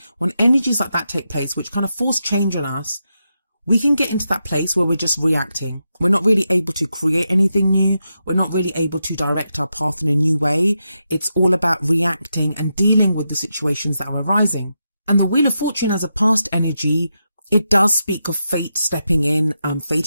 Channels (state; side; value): inverted; both; correlation -0.86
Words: When energies like that take place, which kind of force change on us, we can get into that place where we're just reacting. We're not really able to create anything new. We're not really able to direct our path in a new way. It's all about reacting and dealing with the situations that are arising. And the Wheel of Fortune as a past energy, it does speak of fate stepping in,